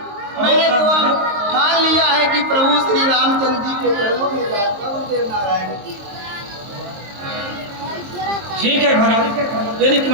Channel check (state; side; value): late; left; 22 ms